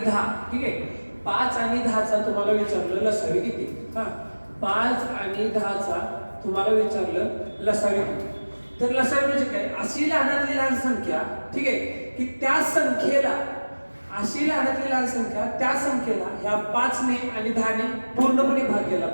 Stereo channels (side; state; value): both; inverted; correlation -1.00